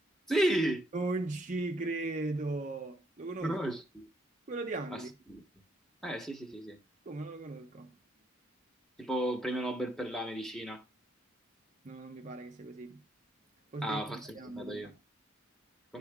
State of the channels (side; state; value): both; normal; correlation 0.73